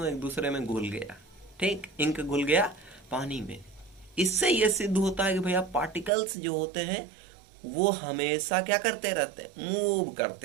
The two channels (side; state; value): left; drops out; at 6.1 s